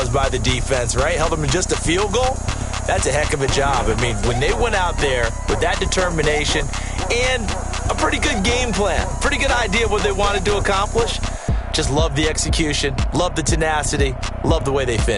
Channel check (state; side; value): identical; both; correlation 1.00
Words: by the defense, right? Held them in just a field goal. That's a heck of a job. I mean, when they went out there with that determination and a pretty good game plan, pretty good idea of what they wanted to accomplish, just love the execution, love the tenacity, love the way they